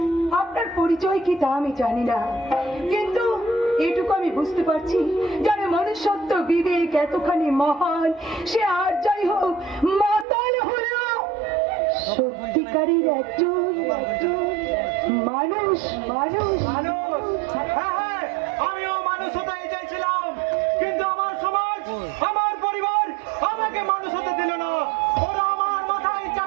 আপনার পরিচয় কি তা আমি জানি না, কিন্তু এটুকু আমি বুঝতে পারছি, যারা মনুষ্যত্ব বিবেক এতখানি মহান, সে আর যাই হোক মাতাল হলো সত্যিকারের একজন মানুষ। মানুষ, হ্যাঁ হ্যাঁ, আমিও মানুষ হতে চাইছিলাম, কিন্তু আমার সমাজ, আমার পরিবার আমাকে মানুষ হতে দিল না। ওরা আমার মাথায়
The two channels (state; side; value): drops out; left; at 10.2 s